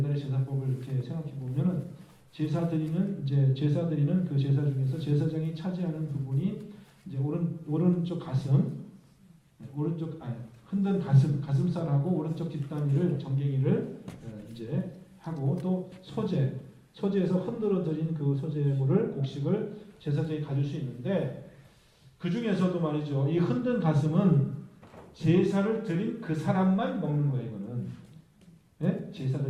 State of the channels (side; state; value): both; identical; correlation 1.00